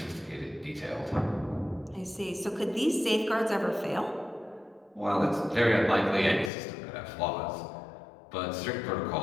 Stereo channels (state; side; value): drops out; right; at 6.5 s